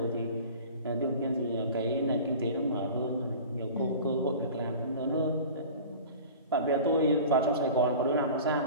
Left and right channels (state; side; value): inverted; both; correlation -0.39